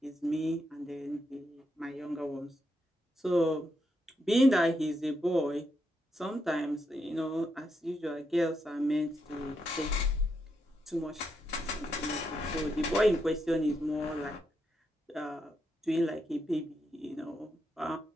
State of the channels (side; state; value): both; normal; correlation 0.82